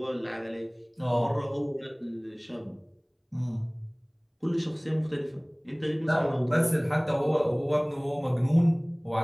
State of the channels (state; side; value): identical; both; correlation 1.00